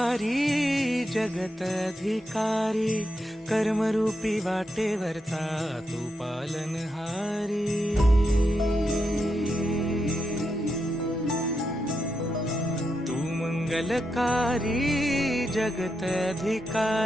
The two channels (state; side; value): normal; both; correlation 0.84